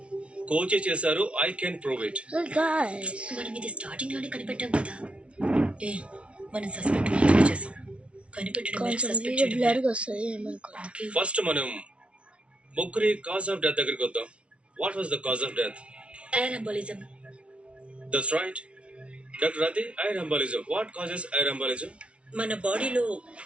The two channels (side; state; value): left; late; 0.061 ms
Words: కోచే చేశారు. I can prove it. మనం ఇది స్టార్టింగ్ లోనే కనిపెట్టాం కదా. మనం సస్పెక్ట్ మాత్రమే చేసాం, కనిపెట్టడం వేరు, కొంచెం సస్పెక్ట్ వీడియో చేయడం బ్లర్గా వస్తుంది ఏమనుకోండి. ఫస్ట్ మనం ముగ్గురి కాజ్ ఆఫ్ డెత్ దగ్గరికి వద్దాం. What was the cause of death? Air embolism. That's right doctor Radhi. Air embolism. What causes air embolism? మన బాడీలో